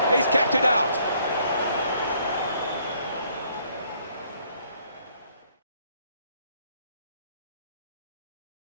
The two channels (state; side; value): inverted; both; correlation -0.65